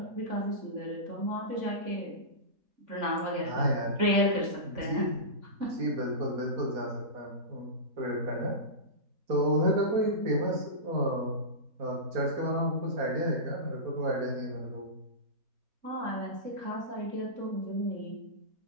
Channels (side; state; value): left; late; 3.5 ms